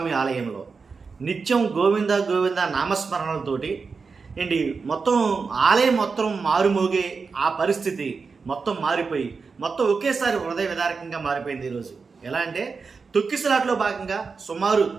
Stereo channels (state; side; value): quieter; left; 4.9 dB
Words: ఆలయంలో నిత్యం గోవింద గోవింద నామస్మరణలతోటి ఏంటి మొత్తం ఆలయం మొత్తం మారుమోగే ఆ పరిస్థితి మొత్తం మారిపోయి మొత్తం ఒకేసారి హృదయ విదారకంగా మారిపోయింది ఈరోజు. ఎలా అంటే తొక్కిసలాట్లో భాగంగా సుమారు